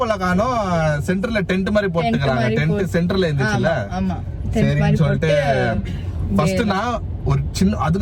காணோம், சென்டர்ல டென்ட் மாதிரி போட்டுக்கிறாங்க. டென்ட் சென்டர்ல இருந்துச்சுல்ல, சரின்னு சொல்லிட்டு ஃபர்ஸ்ட் நான் ஒரு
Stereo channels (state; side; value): identical; both; correlation 1.00